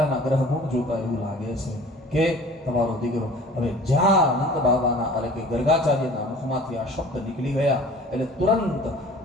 ગ્રહ ગુણ જોતા એવું લાગે છે કે તમારો દીકરો હવે જ્યાં નંદ બાબાના એટલે કે ગર્ગાચાર્યના મુખમાંથી આ શબ્દ નીકળી ગયા એટલે તુરંત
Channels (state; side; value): normal; both; correlation 0.46